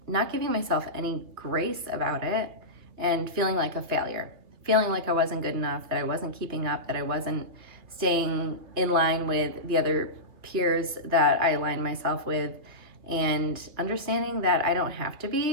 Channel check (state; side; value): late; left; 2.8 ms